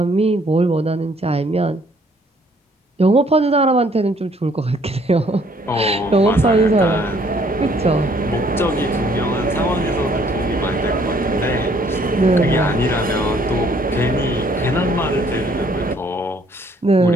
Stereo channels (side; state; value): both; normal; correlation 0.63